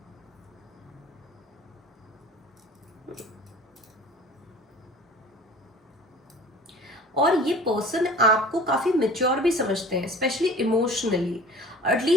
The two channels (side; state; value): both; normal; correlation 0.44